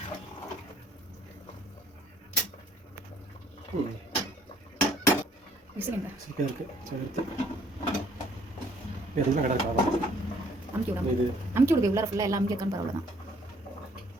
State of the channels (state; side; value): normal; both; correlation 0.62